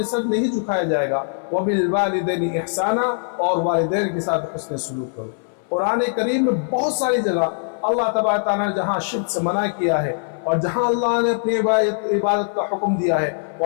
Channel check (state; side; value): silent; right; 60 dB below the other